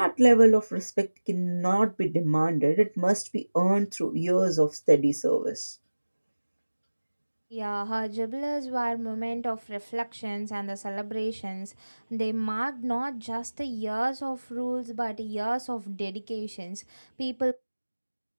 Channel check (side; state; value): both; inverted; correlation -1.00